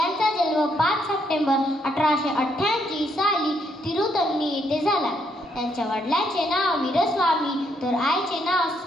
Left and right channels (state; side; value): normal; both; correlation 0.74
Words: जन्म 5 सप्टेंबर 1888 साली तिरुतनी येथे झाला. त्यांच्या वडिलांचे नाव वीरस्वामी तर आईचे नाव